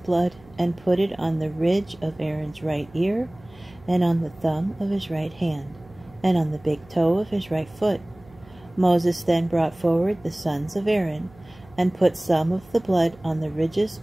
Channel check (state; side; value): noise; right; hum, 25 dB below the sound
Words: and put it on the ridge of Aaron's right ear, and on the thumb of his right hand, and on the big toe of his right foot. Moses then brought forward the sons of Aaron, and put some of the blood on the ridges